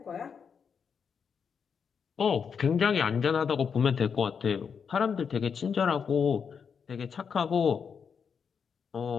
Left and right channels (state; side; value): quieter; right; 6.5 dB